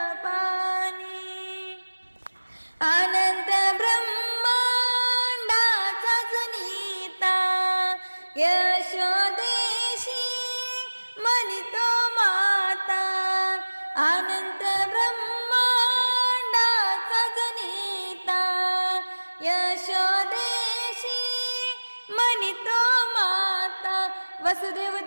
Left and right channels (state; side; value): inverted; both; correlation -1.00